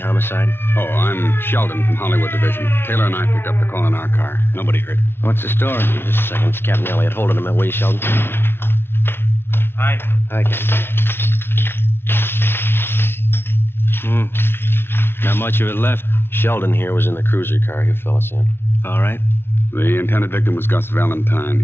Oh, I'm Sheldon from Hollywood Division. Taylor and I picked up the call in our car. Nobody hurt. What's the story? Just a second. It's Captain Elliott. Hold it a minute, will you, Sheldon? Hi. Hi, Captain. Not much of it left. Sheldon here was in the cruiser car you fill us in. All right. The intended victim was Gus Valentine.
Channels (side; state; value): right; late; 0.11 ms